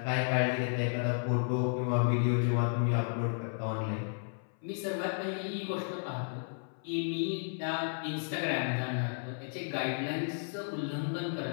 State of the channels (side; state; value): right; silent; 56 dB below the other